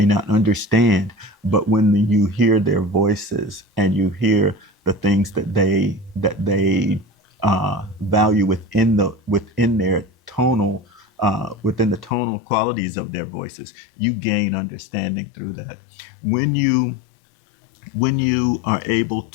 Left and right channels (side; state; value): right; drops out; at 12.1 s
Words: not understand. But when you hear their voices and you hear the things that they value within the tonal qualities of their voices, you gain understanding through that. When you are able